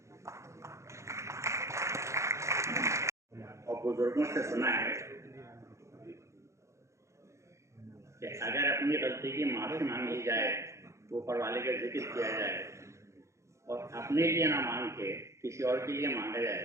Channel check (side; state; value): left; late; 0.14 ms